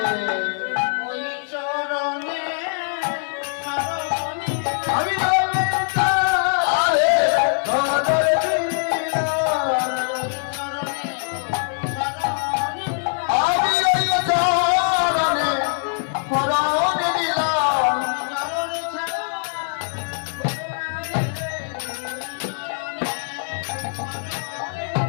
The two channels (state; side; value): silent; right; 59 dB below the other